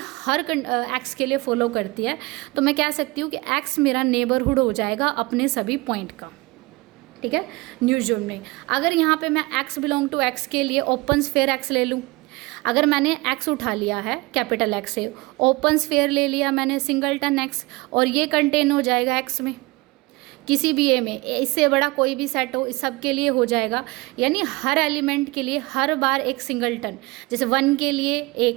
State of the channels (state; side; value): quieter; left; 23.0 dB